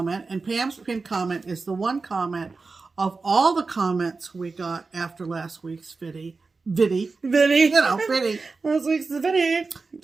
and Pam's pinned comment is the one comment of all the comments we got after last week's viddy. Last week's viddy.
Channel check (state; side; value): quieter; left; 4.1 dB